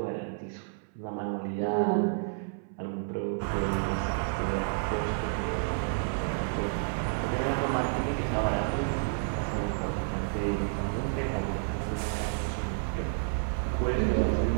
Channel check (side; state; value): left; silent; 58 dB below the other